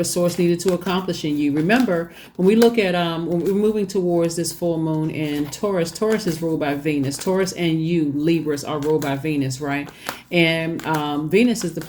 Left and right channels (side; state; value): both; identical; correlation 1.00